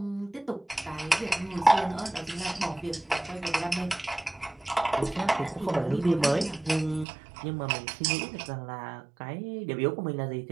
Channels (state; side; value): drops out; left; at 7.1 s